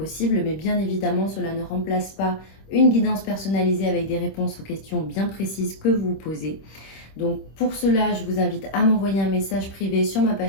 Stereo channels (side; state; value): right; late; 26 ms